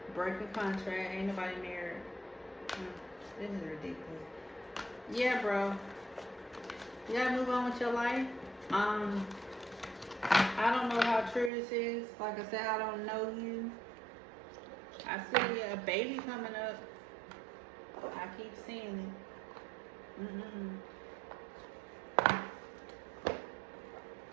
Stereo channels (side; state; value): left; drops out; at 11.5 s